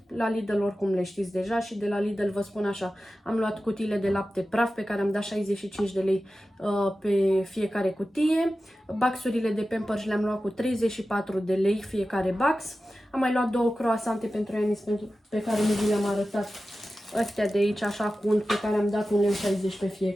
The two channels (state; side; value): normal; both; correlation 0.94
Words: La Lidl oricum le știți deja și de la Lidl vă spun așa, am luat cutiile de lapte praf pe care am dat 65 de lei pe fiecare cutie. Baxurile de Pampers le-am luat cu 34 de lei fiecare bax. Am mai luat 2 croasante pentru Enis pe care nu vi le-am arătat. Astea de aici așa cu unt pe care am dat 1,60 lei pe